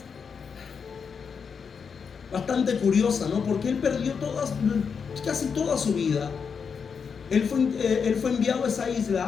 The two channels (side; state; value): right; quieter; 6.2 dB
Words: bastante curiosa, ¿no? Porque él perdió casi toda su vida. Él fue enviado a esa